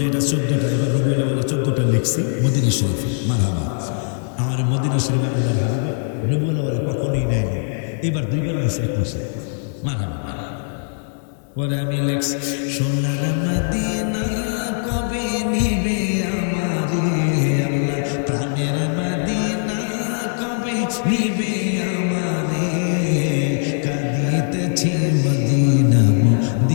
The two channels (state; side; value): silent; right; 65 dB below the other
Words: এটা 14টা, এবার রবিউল আউয়ালে 14টা লিখছি মদিনা শরীফে। মারহাবা। আমার মদিনা শরীফে আল্লাহর হাবিবে রবিউল আউয়ালে কখনোই নেয় নাই, এবার 2বার দিছে 1 মাসে। মারহাবা। পরে আমি লেখছি, সোনার মদিনা কবে নিবে আমারে আল্লাহ, প্রাণের মদিনা কবে নিবে আমারে, কাঁদিতেছি মদিনা